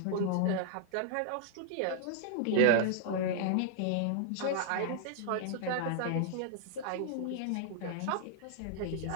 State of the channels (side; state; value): both; different; correlation -0.01